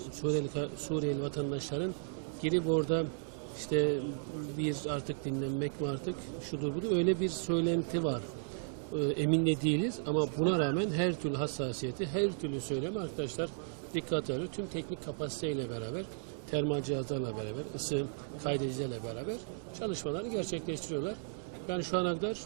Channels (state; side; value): silent; left; 55 dB below the other